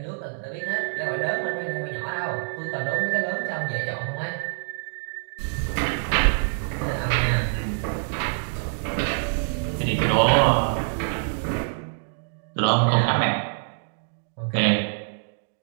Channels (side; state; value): left; silent; digital silence